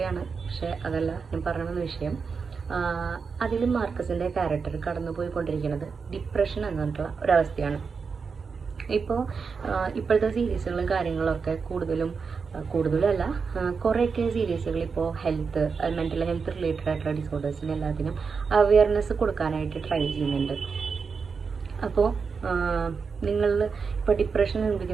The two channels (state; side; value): quieter; left; 5.4 dB